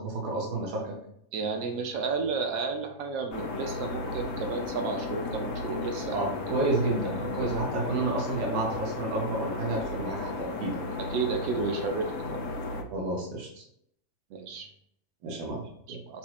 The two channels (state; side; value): late; left; 5.5 ms